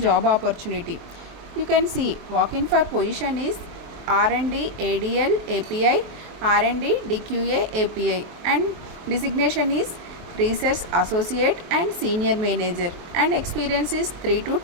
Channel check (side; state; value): left; late; 23 ms